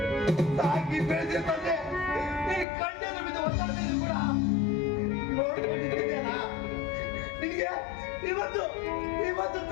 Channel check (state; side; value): drops out; right; at 2.7 s